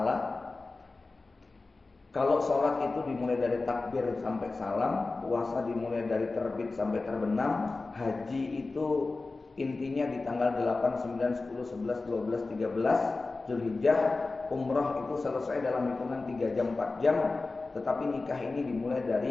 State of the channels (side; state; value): right; quieter; 3.6 dB